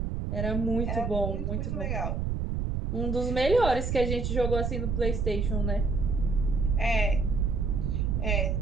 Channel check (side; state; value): right; noise; rumble, 1 dB below the sound